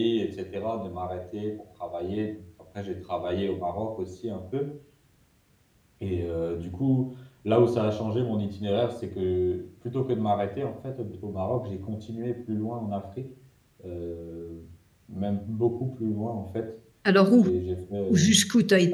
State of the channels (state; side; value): identical; both; correlation 1.00